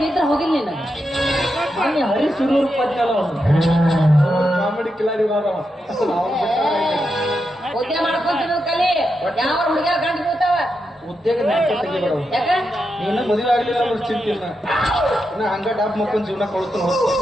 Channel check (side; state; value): both; normal; correlation 0.86